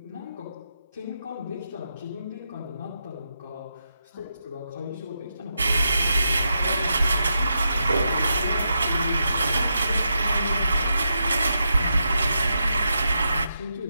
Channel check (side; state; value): both; inverted; correlation -0.84